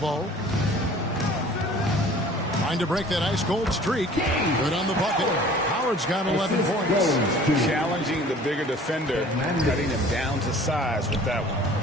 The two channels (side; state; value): both; normal; correlation 0.48